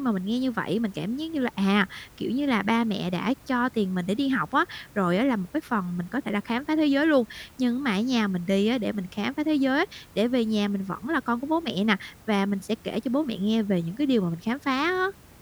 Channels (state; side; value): identical; both; correlation 1.00